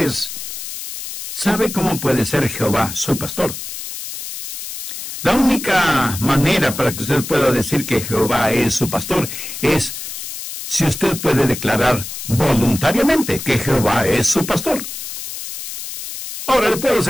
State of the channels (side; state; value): left; noise; hiss, 8 dB below the sound